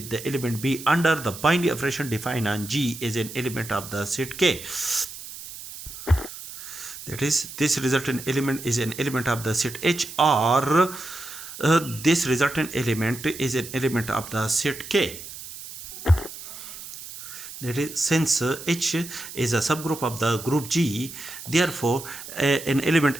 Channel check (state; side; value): noise; right; hiss, 12 dB below the sound